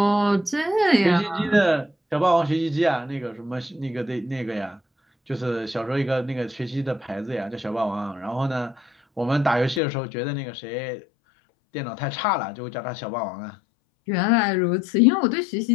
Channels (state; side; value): drops out; right; at 9.8 s